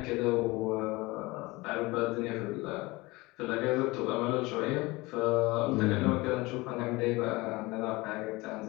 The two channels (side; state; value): right; quieter; 22.4 dB